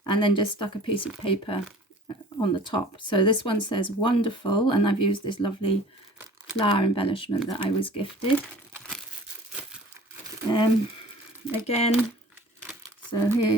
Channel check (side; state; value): both; normal; correlation 0.46